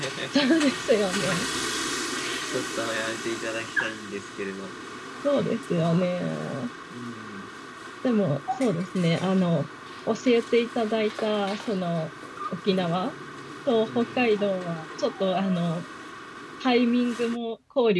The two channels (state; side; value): identical; both; correlation 1.00